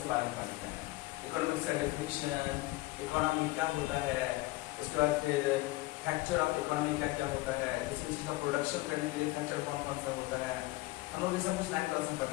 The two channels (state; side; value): quieter; right; 20.5 dB